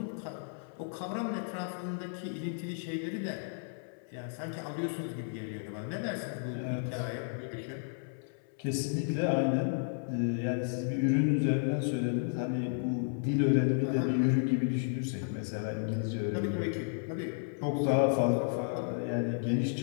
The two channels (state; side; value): silent; right; 56 dB below the other